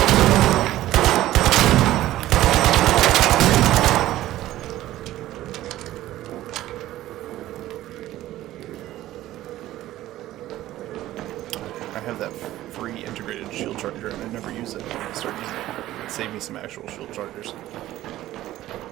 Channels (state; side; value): quieter; left; 14.8 dB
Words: I have that free integrated shield charger and I never use it. I start using it. It'd save me some actual shield chargers.